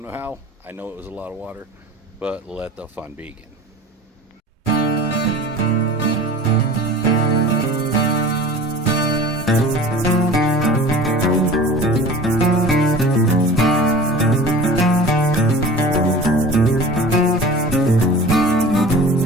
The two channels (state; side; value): normal; both; correlation 0.39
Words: know how. I know it was a lot of water, but let the fun begin.